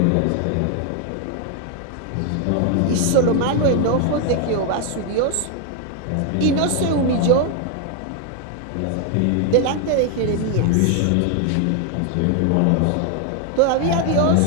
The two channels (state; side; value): different; both; correlation 0.01